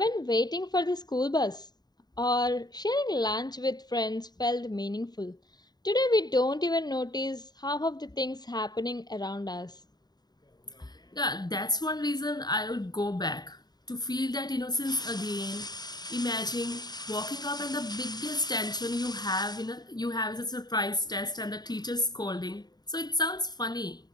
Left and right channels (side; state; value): right; late; 0.20 ms